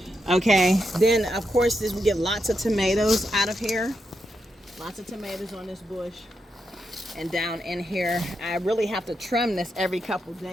Okay, then of course we get lots of tomatoes out of here. Lots of tomatoes on this bush. And down in here, I really have to trim this every couple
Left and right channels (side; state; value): both; normal; correlation 0.84